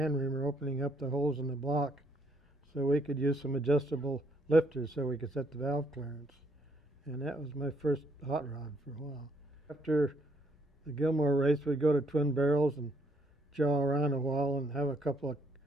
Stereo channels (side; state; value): both; normal; correlation 0.69